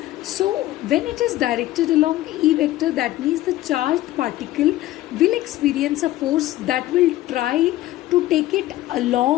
So, when it is directed along E vector, that means the charged particle will experience a force that will try to take it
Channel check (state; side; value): quieter; right; 15.7 dB